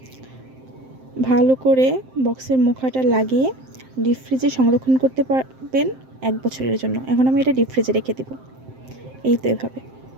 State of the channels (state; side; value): late; left; 7.7 ms